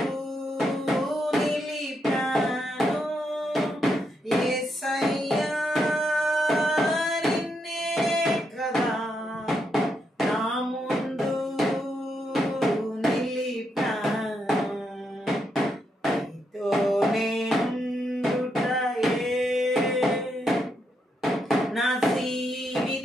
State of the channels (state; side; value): normal; both; correlation 0.80